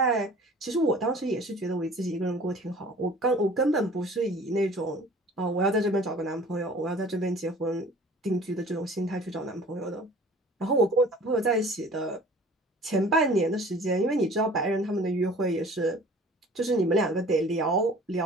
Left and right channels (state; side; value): normal; both; correlation 0.47